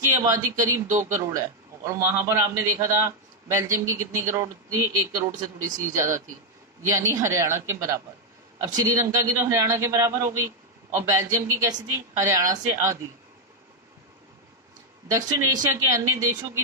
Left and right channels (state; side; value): normal; both; correlation 0.01